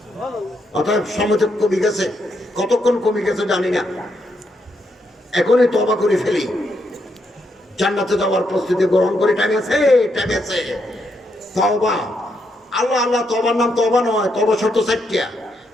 অতএব সময় কমে গেছে। কতক্ষণ কমে গেছে জানি না। এখনই তওবা করে ফেলি, জান্নাতে যাওয়ার প্রস্তুতি গ্রহণ করে। টাইম আছে। তওবা, আল্লাহ তওবার নাম তওবা নয়। তওবা শর্ত 4টা।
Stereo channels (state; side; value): normal; both; correlation 0.79